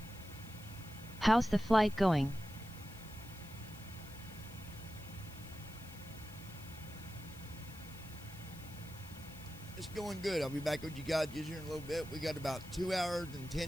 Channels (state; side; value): noise; left; hiss, 19 dB below the sound